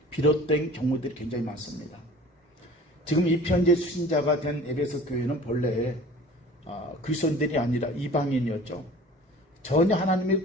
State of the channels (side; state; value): both; normal; correlation 0.44